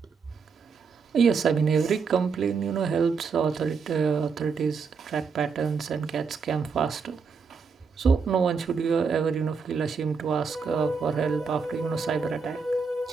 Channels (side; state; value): left; quieter; 5.3 dB